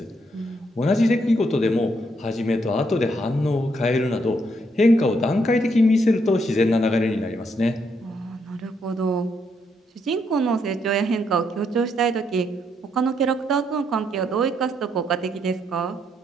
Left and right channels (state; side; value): normal; both; correlation 0.75